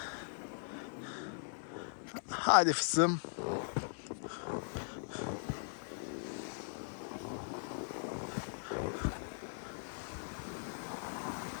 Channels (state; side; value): silent; right; 51 dB below the other